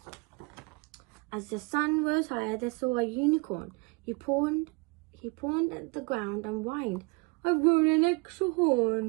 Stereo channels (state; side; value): quieter; left; 29.1 dB